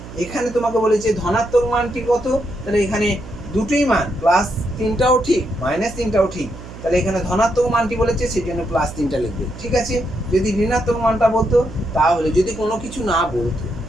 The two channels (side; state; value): right; noise; hum, 14 dB below the sound